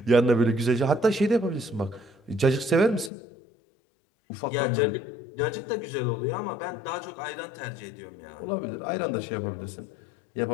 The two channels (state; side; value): drops out; right; at 3.1 s